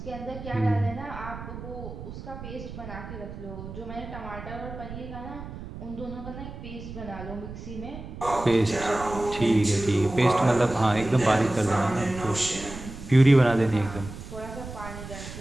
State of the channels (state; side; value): noise; right; rumble, 11 dB below the sound